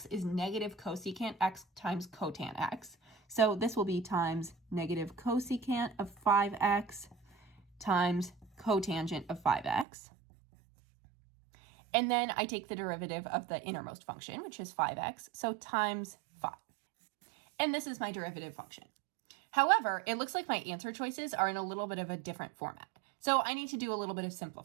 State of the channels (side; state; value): left; drops out; at 9.9 s